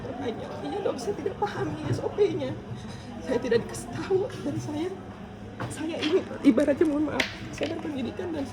Iya dok, saya tidak pahami SOP-nya. Saya tidak dikasih tahu dan saya ini ibaratnya mohon maaf, saya berpendidikan dan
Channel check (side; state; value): both; identical; correlation 1.00